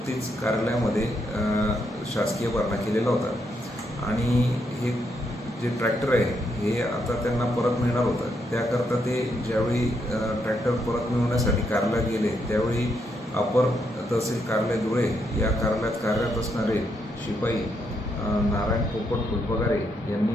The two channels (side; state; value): both; normal; correlation 0.78